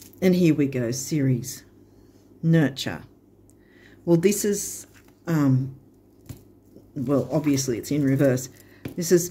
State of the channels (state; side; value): identical; both; correlation 1.00